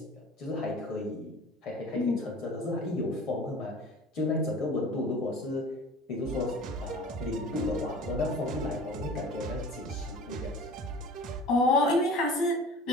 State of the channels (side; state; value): both; normal; correlation 0.41